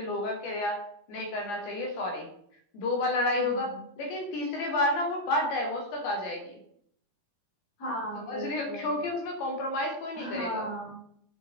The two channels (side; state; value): right; late; 15 ms